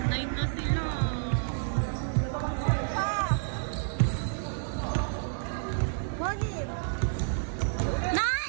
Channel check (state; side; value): silent; left; 58 dB below the other